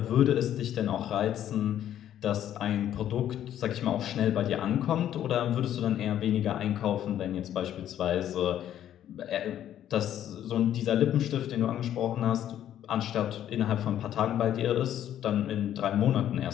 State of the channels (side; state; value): right; quieter; 11.1 dB